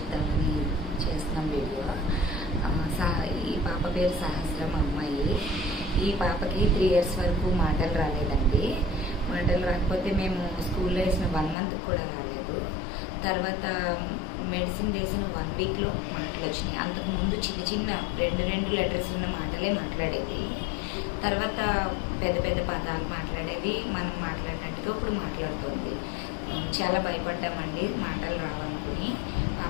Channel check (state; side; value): drops out; right; at 11.6 s